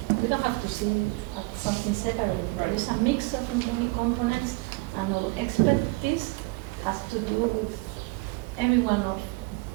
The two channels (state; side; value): quieter; left; 25.0 dB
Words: don't have to see it as something separate. There is a mix of many components, and our expertise has to do with every one of